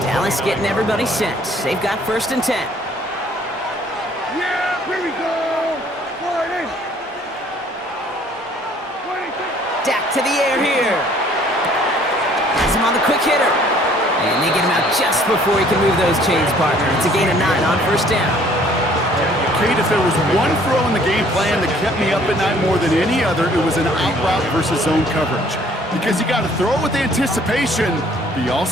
Dallas getting everybody set. They've got 1st and 10. Yeah, here we go. Dak to the air here. Has him on the quick hitter. And they get him out just before he can move those chains, partner. It's a gain of 9 on 1st down. Kate, if there was one throw in the game plan that kept me up at night more than any other, it was an out route versus zone coverage. Because you got to throw with anticipation, but you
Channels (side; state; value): both; normal; correlation 0.58